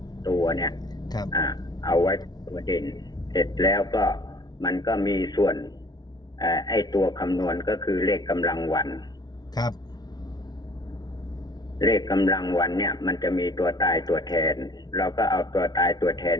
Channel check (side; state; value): right; late; 0.19 ms